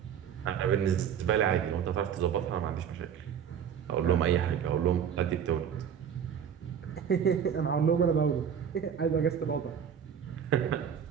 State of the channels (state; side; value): quieter; left; 8.2 dB